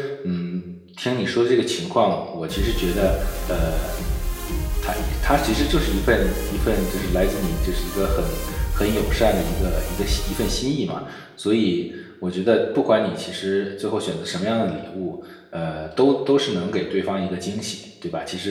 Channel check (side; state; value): both; identical; correlation 1.00